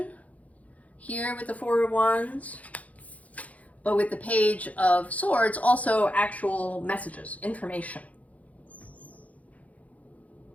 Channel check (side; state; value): right; late; 0.069 ms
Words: here with the Four of Wands, but with the Page of Swords also actual messages, information,